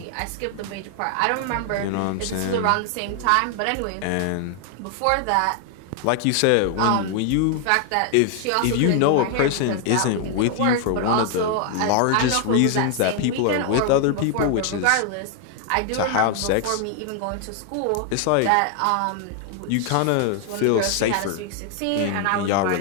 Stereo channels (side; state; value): both; different; correlation 0.00